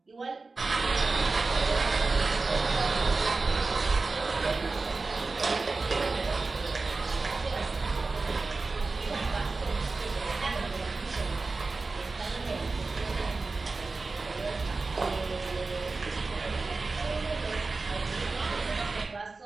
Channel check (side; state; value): left; quieter; 3.8 dB